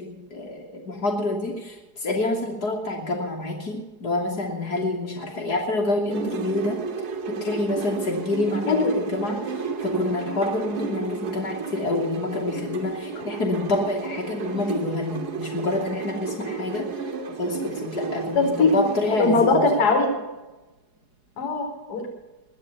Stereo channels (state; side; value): late; right; 4.8 ms